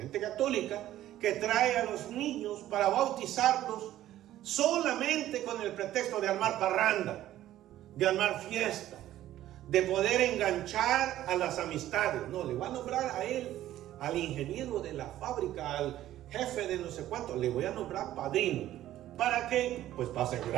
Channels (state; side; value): quieter; left; 13.4 dB